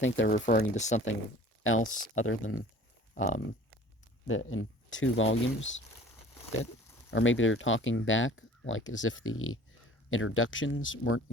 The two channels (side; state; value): both; normal; correlation 0.47